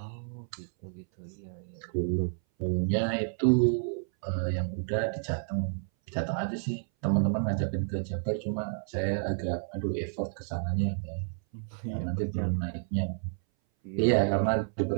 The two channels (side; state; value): left; silent; 57 dB below the other